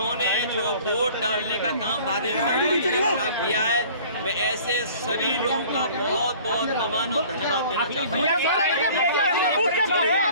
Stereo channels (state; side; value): inverted; both; correlation -0.48